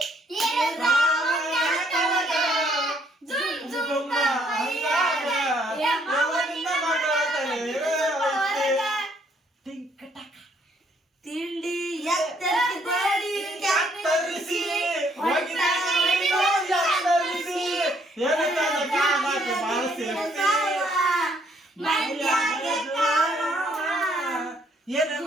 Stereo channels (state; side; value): normal; both; correlation 0.67